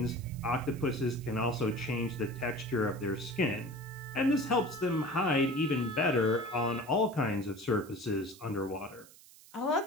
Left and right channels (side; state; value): right; noise; hiss, 22 dB below the sound